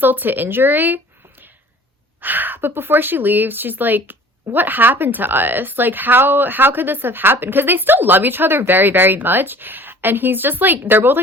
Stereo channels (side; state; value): both; normal; correlation 0.47